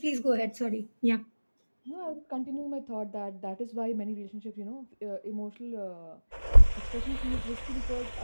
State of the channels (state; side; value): inverted; both; correlation -1.00